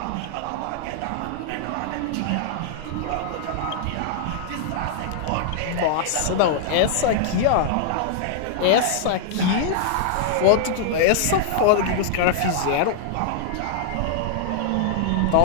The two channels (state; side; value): different; both; correlation -0.01